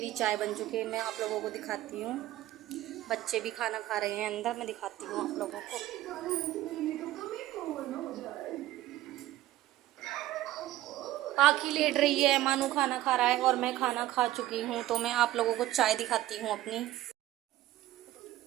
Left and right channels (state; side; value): quieter; left; 15.1 dB